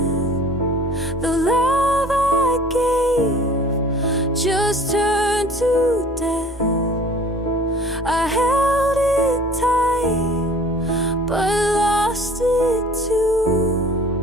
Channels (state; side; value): normal; both; correlation 0.47